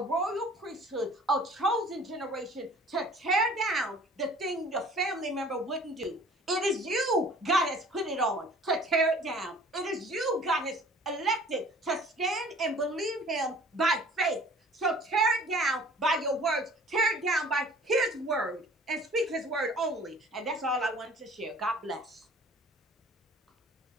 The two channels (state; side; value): normal; both; correlation 0.50